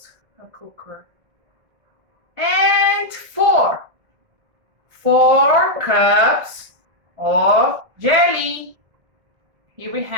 a cooker. And 4. 4 cups of jelly. Here we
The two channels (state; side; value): late; left; 1.6 ms